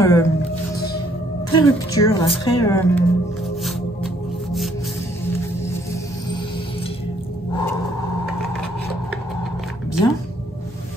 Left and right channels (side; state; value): both; normal; correlation 0.66